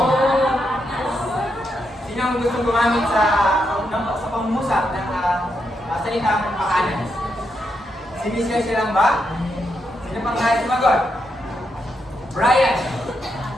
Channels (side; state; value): both; normal; correlation 0.82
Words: Sino ang gusto gumamit sa pangmusap ng salitang paanas? Si Miss Garcia lang ba? Sino pang nais sumagot? Brian.